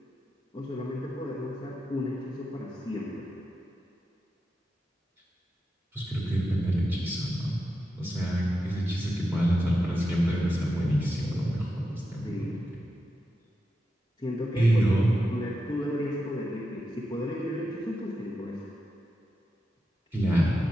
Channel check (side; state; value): both; normal; correlation 0.89